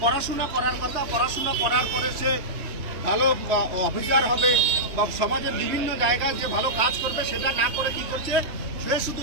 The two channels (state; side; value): late; left; 3.0 ms